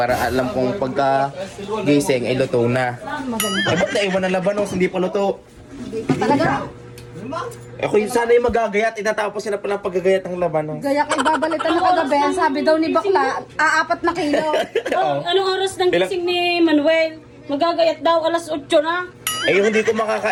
alam kong pagka gising ay luto na. Eh, ba't naiwan ng labanos? Hindi pa luto. Talaga? Ako yung sana yung magagayat, itatapos na pala paggagayat ng labanos. Gaya kay babalitan na kagabi. Ang sabi daw ni Bakla, 4 na kilo. Oh, anong oras ng gising ni Manuel? Magagayat daw, alas 8 na. Eh, yung hindi ko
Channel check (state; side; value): identical; both; correlation 1.00